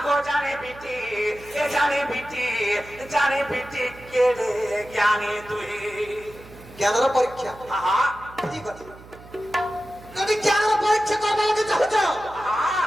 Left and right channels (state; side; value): noise; right; hum, 20 dB below the sound